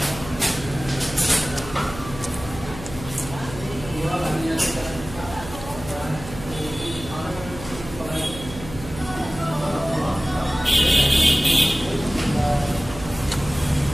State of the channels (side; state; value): right; noise; hum, 12 dB below the sound